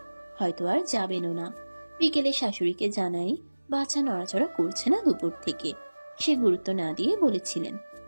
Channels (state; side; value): inverted; both; correlation -1.00